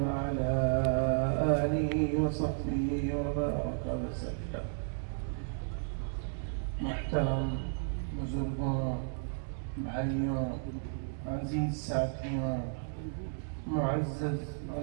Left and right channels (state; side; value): silent; left; digital silence